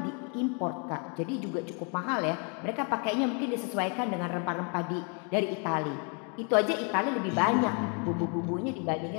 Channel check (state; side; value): quieter; right; 37.4 dB